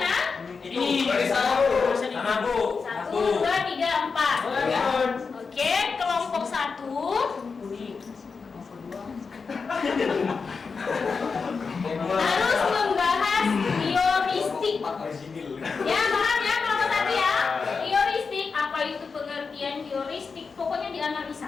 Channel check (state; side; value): quieter; right; 5.0 dB